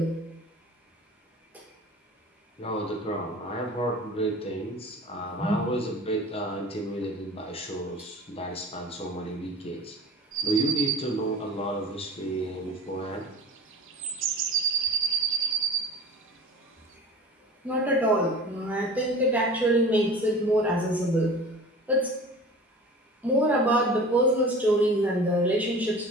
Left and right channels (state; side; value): normal; both; correlation 0.39